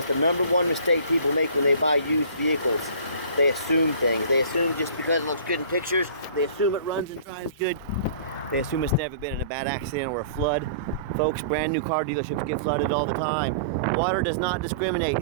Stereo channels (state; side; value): inverted; both; correlation -0.46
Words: the #1 mistake people make when they buy used vehicles. They assume things. They assume just because it looks good in pictures, they assume it runs and drives good. They assume it's never been in a bad accident or a flood. Folks, brand new car dealerships get flooded all the time. Water does not discriminate.